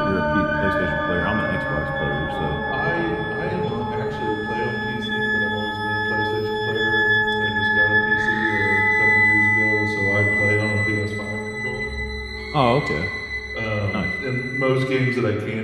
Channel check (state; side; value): identical; both; correlation 1.00